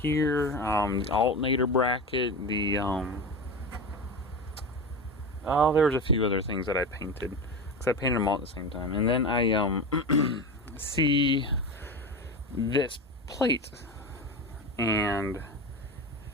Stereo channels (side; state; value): both; normal; correlation 0.24